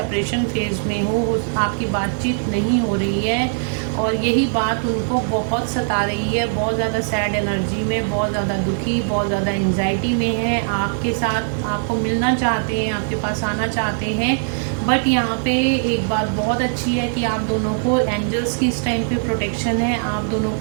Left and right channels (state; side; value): silent; left; digital silence